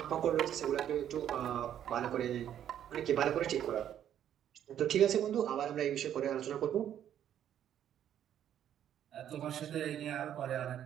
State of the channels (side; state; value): left; quieter; 10.3 dB